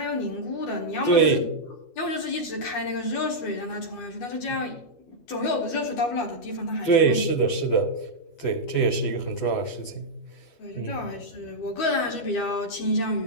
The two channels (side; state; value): right; late; 12 ms